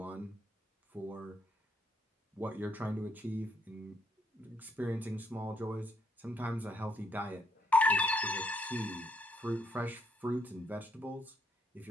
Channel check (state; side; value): normal; both; correlation 0.73